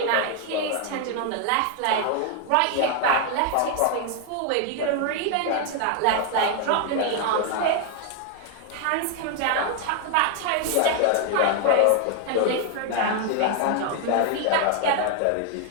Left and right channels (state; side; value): different; both; correlation 0.00